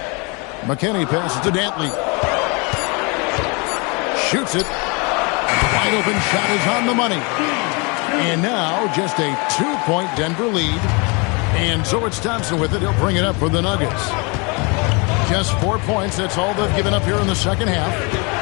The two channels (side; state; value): right; quieter; 30.6 dB